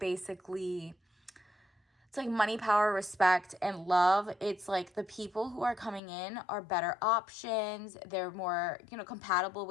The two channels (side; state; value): right; drops out; at 6.0 s